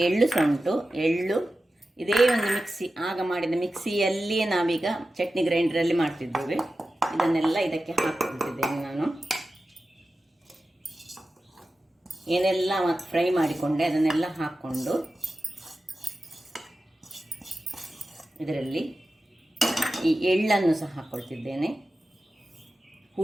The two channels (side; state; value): both; normal; correlation 0.93